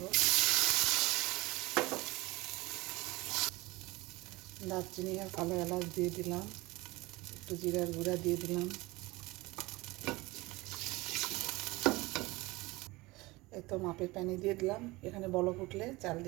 দারচিনি আর কালো এলাচ দিয়ে দিলাম, একটু জিরার গুঁড়া দিয়ে দিলাম। এই তো মাপের পানি দিয়ে দিলাম। এখানে বলক উঠলে চাল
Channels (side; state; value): left; quieter; 21.6 dB